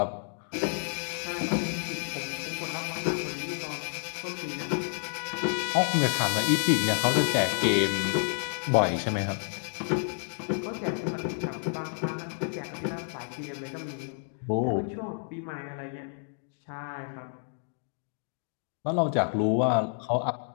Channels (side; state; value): right; silent; 58 dB below the other